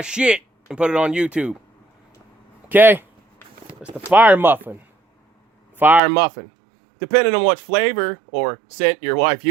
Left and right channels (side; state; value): left; drops out; at 6.0 s